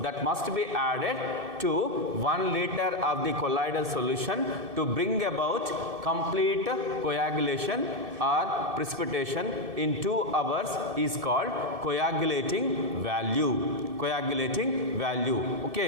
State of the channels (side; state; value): left; late; 2.6 ms